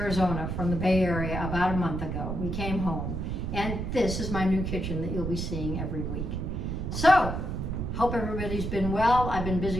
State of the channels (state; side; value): noise; right; rumble, 3 dB below the sound